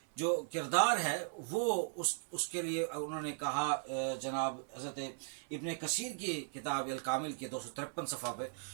जो किरदार है वो उसके लिए उन्होंने कहा, जनाब हज़रत इब्न कसीर की किताब अल कामिल के 253 सफ़ा पे,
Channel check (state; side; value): silent; left; 53 dB below the other